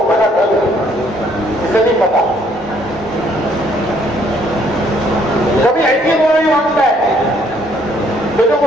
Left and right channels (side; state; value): both; normal; correlation 0.65